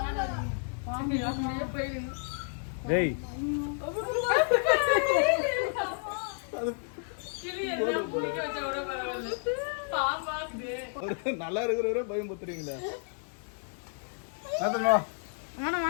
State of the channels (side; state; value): right; silent; 57 dB below the other